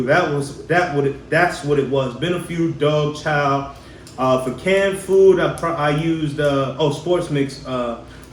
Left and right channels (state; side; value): identical; both; correlation 1.00